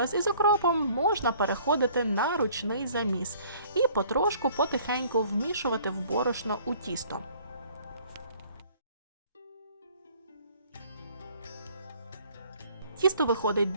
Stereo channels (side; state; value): both; inverted; correlation -0.55